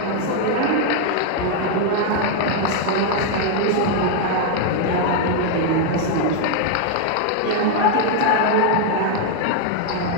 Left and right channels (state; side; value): different; both; correlation 0.00